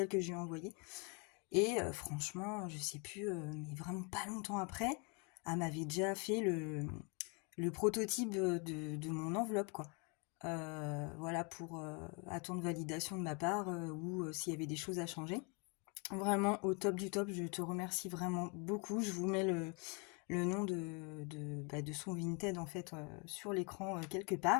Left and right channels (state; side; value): quieter; right; 33.7 dB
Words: que je lui ai envoyées. Et franchement, je sais plus, mais vraiment pas longtemps après, elle m'avait déjà fait le prototype de mon enveloppe, quoi. Voilà, pour attendre validation de ma part ou s'il y avait des choses à changer. Vraiment au top du top, je te remercie vraiment beaucoup. Je vous mets le nom de son Vinted en fait sur l'écran quelque